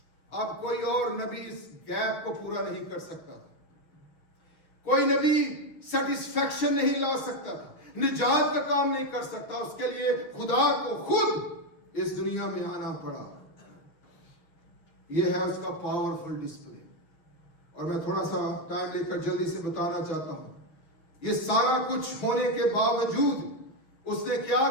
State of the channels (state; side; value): late; right; 6.4 ms